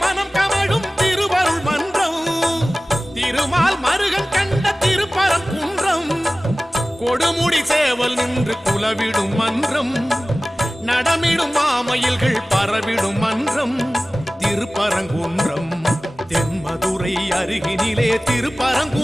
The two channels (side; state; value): both; normal; correlation 0.97